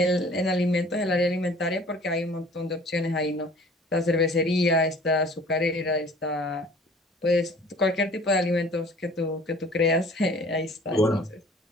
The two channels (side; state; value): both; normal; correlation 0.50